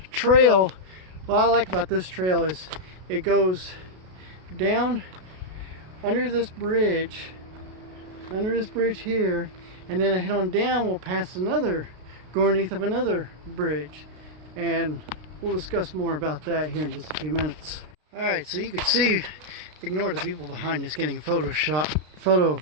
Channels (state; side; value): late; left; 33 ms